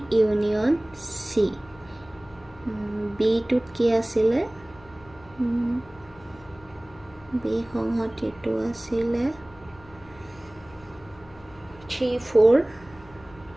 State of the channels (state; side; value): noise; left; hum, 23 dB below the sound